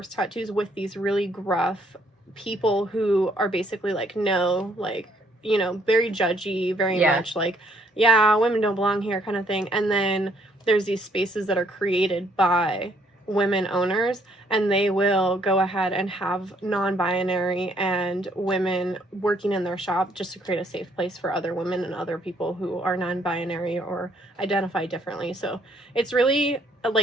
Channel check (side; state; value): both; normal; correlation 0.67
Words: tattoos with these really gruff people who are basically like, no, like, very judgy, very much like, yeah, women don't belong here kind of thing. And then there's these spaces that are created by women owners, and they will go ahead and have non-binary and women working in their shop just to create a safe place for other women and other people who are non-binary or identify differently. So it's really